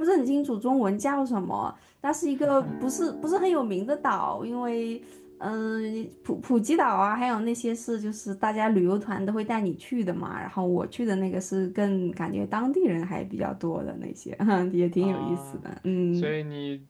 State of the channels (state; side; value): identical; both; correlation 1.00